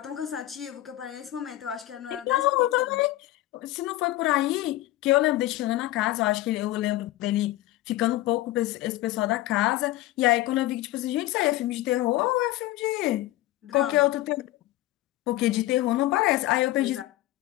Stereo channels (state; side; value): quieter; right; 16.3 dB